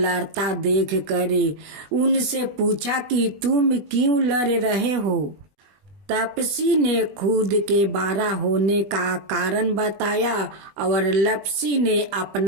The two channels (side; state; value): left; late; 20 ms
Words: देख कर उनसे पूछा कि तुम क्यों लड़ रहे हो। तपसी ने खुद के बारा होने का कारण बताया और लपसी ने